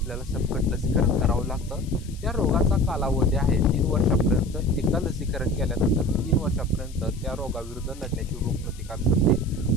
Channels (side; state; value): left; noise; hiss, 22 dB below the sound